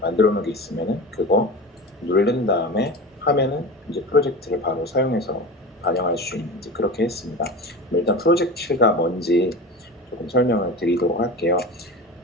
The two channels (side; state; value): both; normal; correlation 0.30